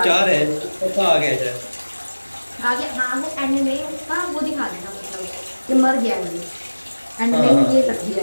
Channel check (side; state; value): both; inverted; correlation -1.00